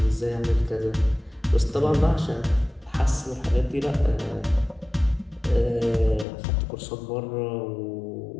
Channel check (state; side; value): drops out; right; at 6.2 s